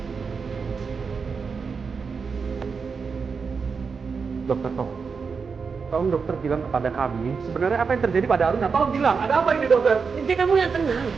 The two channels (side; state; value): left; quieter; 5.4 dB